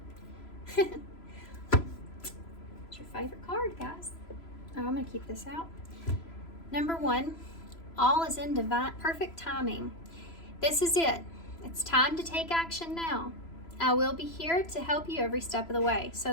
What's your favorite card, guys? Oh, I'm going to keep this out. Number 1, all is in divine, perfect timing. This is it. It's time to take action now. I will be here to help you every step of the way. So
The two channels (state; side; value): late; right; 3.0 ms